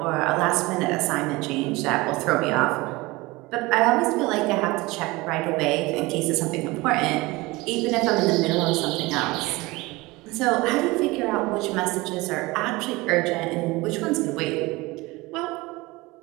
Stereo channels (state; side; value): quieter; left; 22.1 dB